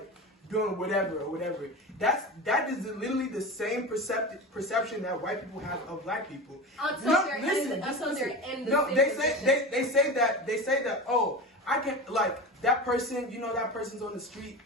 Doing whatever. That is literally the same perception that white people have of Black people. Until they're in the No, they say that. Oh, I can that person. That person's on the street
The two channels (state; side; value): normal; both; correlation 0.28